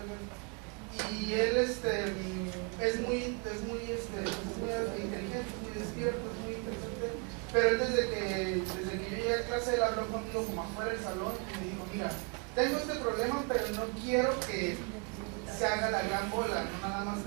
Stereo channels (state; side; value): quieter; left; 33.2 dB